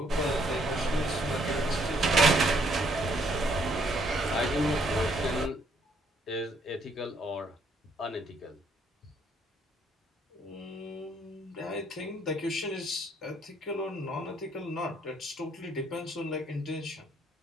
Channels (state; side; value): normal; both; correlation 0.68